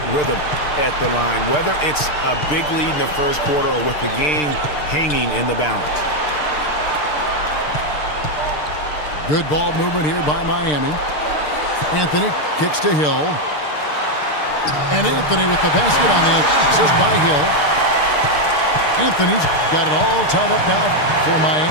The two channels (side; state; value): right; late; 6.7 ms